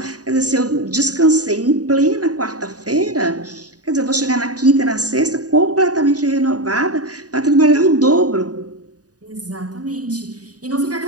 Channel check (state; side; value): late; left; 0.68 ms